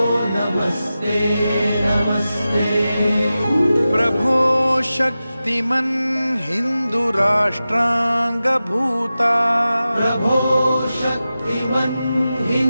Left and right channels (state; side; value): inverted; both; correlation -0.94